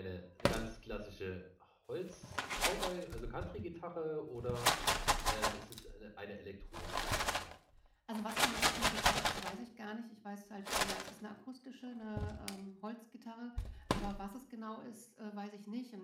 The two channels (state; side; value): identical; both; correlation 1.00